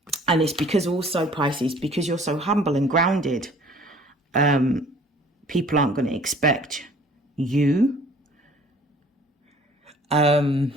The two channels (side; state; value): both; normal; correlation 0.53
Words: And it's because also, Pisces, because you're so humble and grounded, people aren't going to expect you